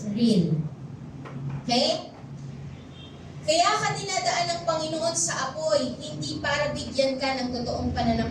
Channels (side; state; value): both; identical; correlation 1.00